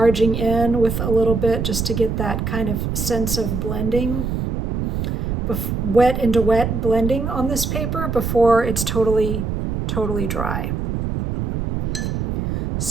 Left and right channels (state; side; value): noise; right; rumble, 1 dB below the sound